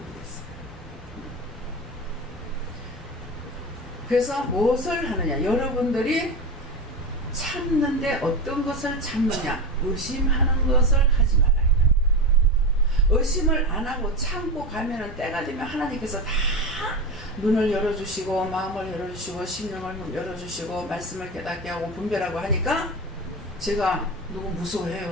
그래서 무엇을 하느냐? 여러분들이 참는데 어떤 것을 참느냐? 의심하는 것을 하지 말라. 의심을 안 하고 참고 가면은 때가 되면 하나님께서 다 눈을 열어주시고 마음을 열어주시고 심령을 열어주시고 말씀을 깨닫게 하고 분별하고 하니까 제가 누구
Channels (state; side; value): normal; both; correlation 0.22